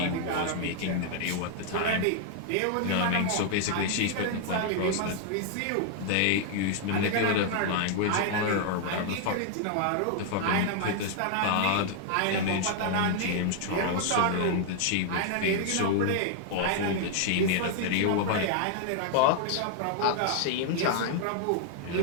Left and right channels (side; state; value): both; different; correlation 0.00